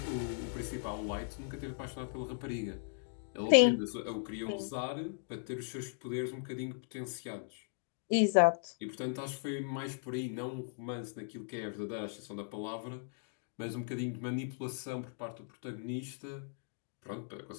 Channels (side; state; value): right; silent; digital silence